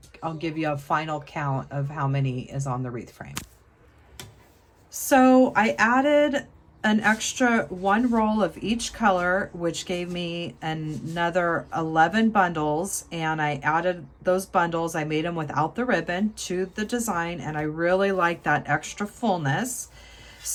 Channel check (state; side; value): identical; both; correlation 1.00